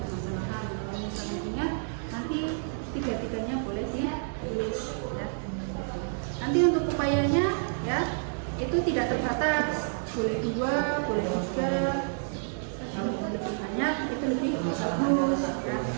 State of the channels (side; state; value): left; silent; digital silence